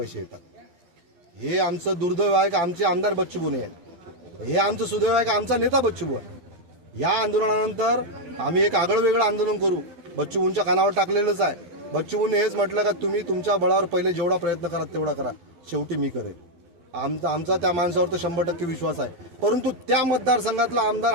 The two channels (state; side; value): late; left; 12 ms